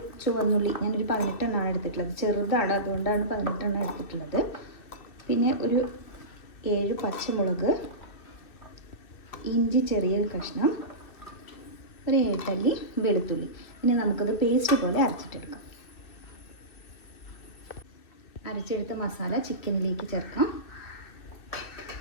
ചുവന്നുള്ളി, ഞാനൊരു 18 എണ്ണമാണ് എടുത്തിട്ടുള്ളത്. ചെറുതാണ്, അതുകൊണ്ടാണ് 18 എണ്ണം എടുത്തിട്ടുള്ളത്. പിന്നെ ഒരു 7 പച്ചമുളക്, ഇഞ്ചി ചെറിയൊരു കഷ്ണം, ഒരു 7 അല്ലി വെളുത്തുള്ളി. ഇനി നമുക്കത് പേസ്റ്റ് പോലെ അരച്ചിട്ടെടുക്കാം. അരച്ചെടുത്ത മസാല ചിക്കനിലേക്ക് ചേർക്കാം.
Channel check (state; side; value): late; right; 2.5 ms